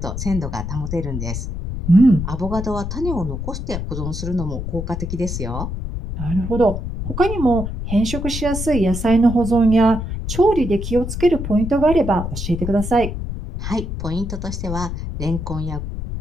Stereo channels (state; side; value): noise; left; rumble, 5 dB below the sound